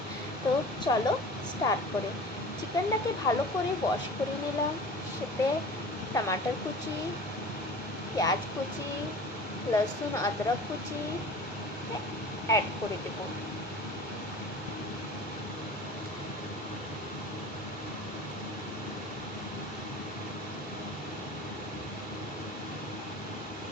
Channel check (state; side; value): normal; both; correlation 0.39